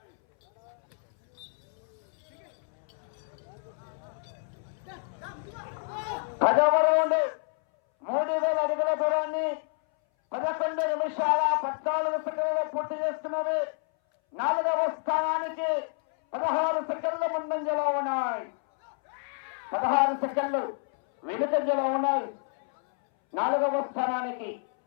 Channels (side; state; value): right; silent; 59 dB below the other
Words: పదవ రౌండ్ 3000 అడుగుల దూరాన్ని 11 నిమిషాల 14 సెకండ్లలో పూర్తి చేస్తున్నది. 4వ స్థానానికి 16 సెకండ్ల ముందంజలో ఉన్నాయి. 16 సెకండ్లు వెనుకంజలో ఉన్నాయి. 4వ స్థానానికి